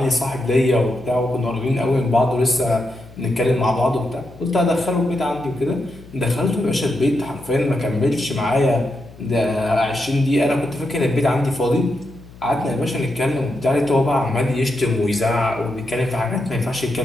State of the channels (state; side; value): noise; left; hum, 21 dB below the sound